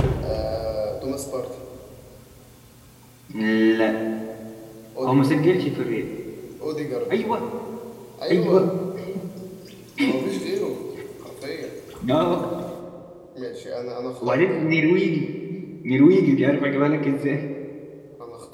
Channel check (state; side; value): identical; both; correlation 1.00